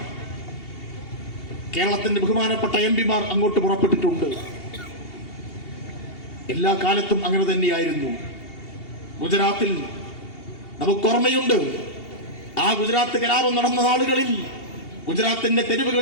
കേരളത്തിന്റെ ബഹുമാനപ്പെട്ട എംപിമാർ അങ്ങോട്ട് പുറപ്പെട്ടിട്ടുണ്ട്. എല്ലാ കാലത്തും അങ്ങനെ തന്നെയായിരുന്നു. ഗുജറാത്തിൽ നമുക്ക് ഓർമ്മയുണ്ട്, ആ ഗുജറാത്ത് കലാപം നടന്ന നാളുകളിൽ ഗുജറാത്തിന്റെ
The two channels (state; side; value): late; right; 2.8 ms